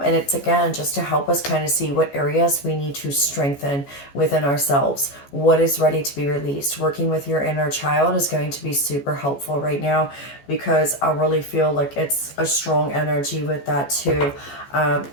it's again just to help us kind of see what areas we need to strengthen within ourselves, what is ready to be released. Working with your inner child is going to be super helpful right now, because I really feel like it's a strong energy with that too.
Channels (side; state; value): right; late; 14 ms